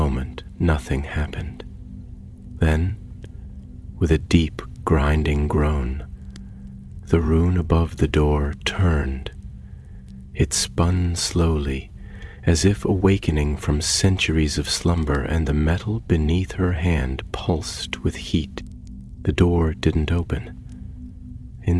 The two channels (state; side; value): identical; both; correlation 1.00